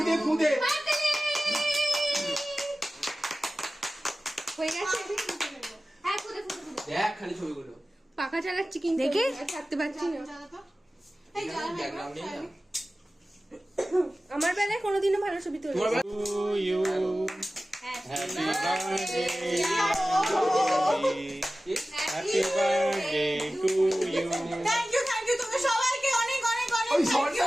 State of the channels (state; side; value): normal; both; correlation 0.96